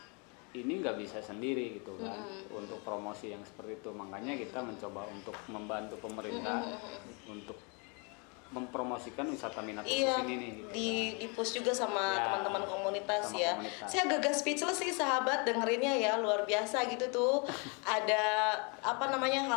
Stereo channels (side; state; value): right; quieter; 33.3 dB